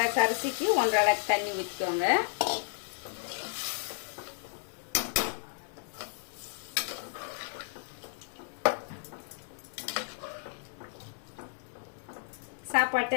அரிசிக்கு 1 அளவுக்கு தண்ணி ஊற்றிக்கோங்க. சாப்பாட்டு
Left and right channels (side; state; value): right; silent; 56 dB below the other